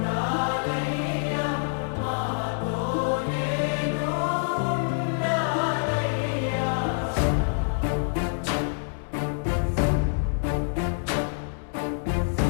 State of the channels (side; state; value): right; silent; digital silence